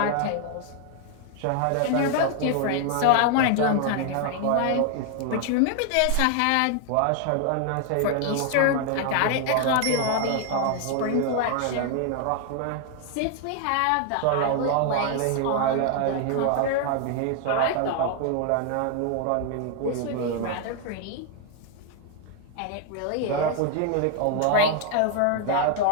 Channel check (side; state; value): both; different; correlation 0.00